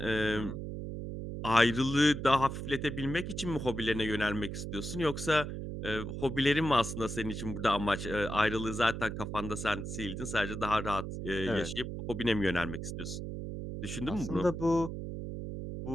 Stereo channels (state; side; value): noise; right; hum, 6 dB below the sound